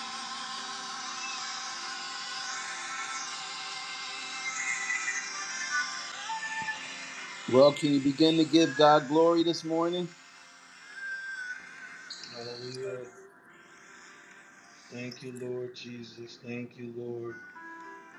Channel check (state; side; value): identical; both; correlation 1.00